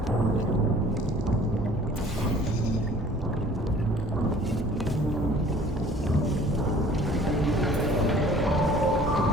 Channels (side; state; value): both; normal; correlation 0.51